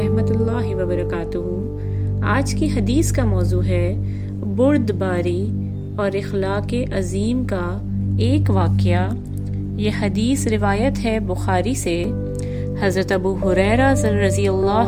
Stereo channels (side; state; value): both; identical; correlation 1.00